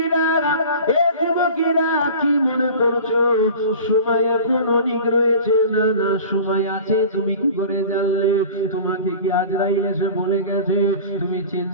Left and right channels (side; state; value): both; inverted; correlation -0.39